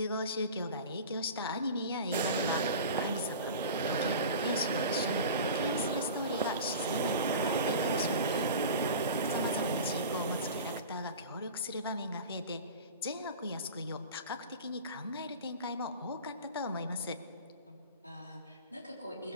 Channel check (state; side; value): inverted; both; correlation -0.34